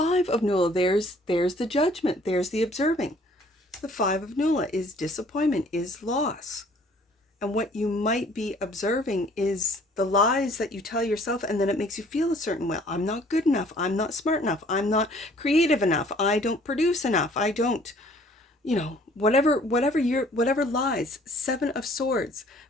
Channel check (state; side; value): normal; both; correlation 0.57